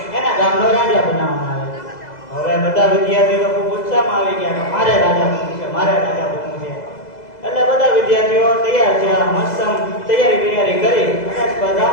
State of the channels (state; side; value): late; right; 2.0 ms